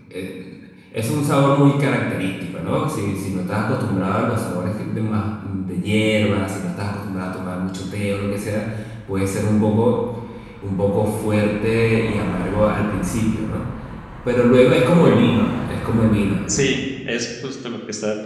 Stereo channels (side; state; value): both; identical; correlation 1.00